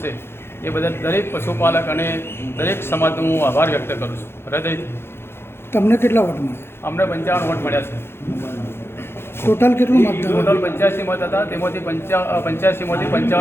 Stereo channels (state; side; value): late; right; 0.11 ms